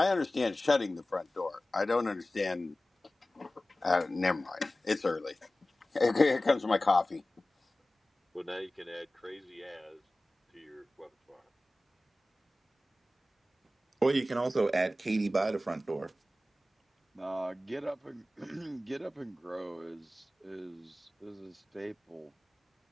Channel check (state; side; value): normal; both; correlation 0.96